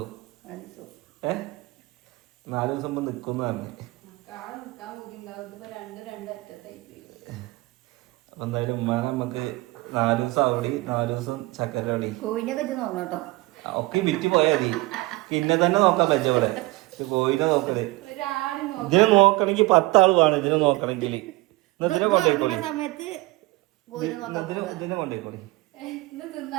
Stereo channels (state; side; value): quieter; left; 21.4 dB